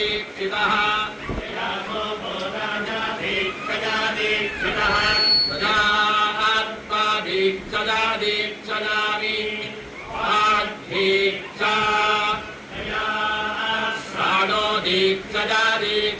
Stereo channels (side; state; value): both; identical; correlation 1.00